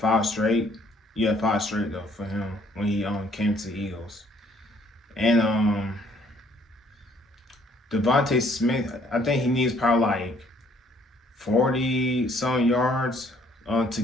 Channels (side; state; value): both; normal; correlation 0.63